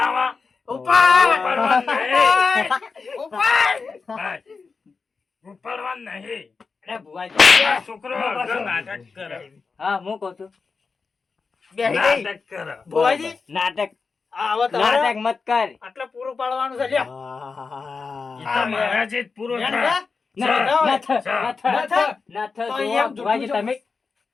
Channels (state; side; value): quieter; right; 4.8 dB